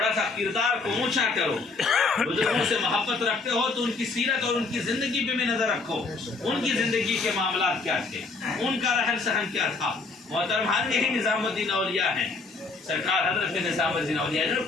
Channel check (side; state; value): right; quieter; 3.9 dB